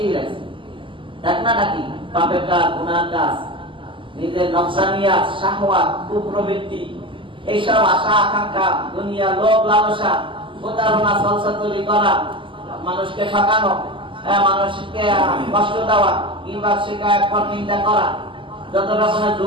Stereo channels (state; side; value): late; left; 0.25 ms